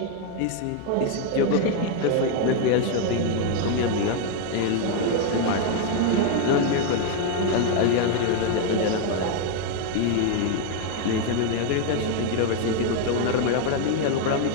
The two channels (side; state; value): both; different; correlation 0.01